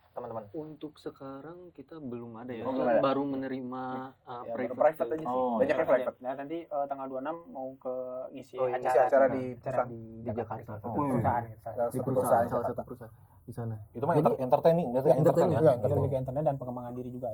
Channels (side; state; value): both; identical; correlation 1.00